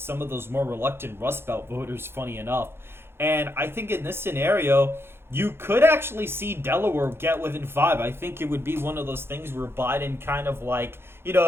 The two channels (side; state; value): left; late; 0.11 ms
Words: of those more reluctant Rust Belt voters, funny enough. And I think in this scenario, you could actually see Delaware get within 5. I think it would be one of those things where Biden kind of like,